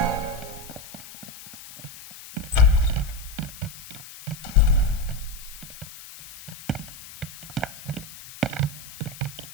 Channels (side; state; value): left; noise; hiss, 16 dB below the sound